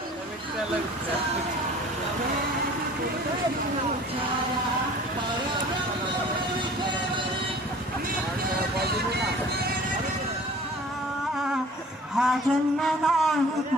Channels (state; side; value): normal; both; correlation 0.47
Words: हा जन्म नाही